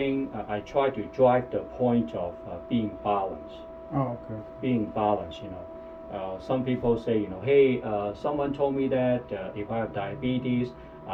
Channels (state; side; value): identical; both; correlation 1.00